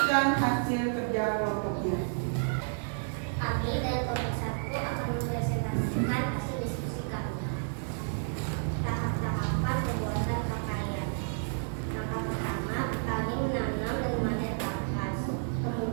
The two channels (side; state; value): left; silent; digital silence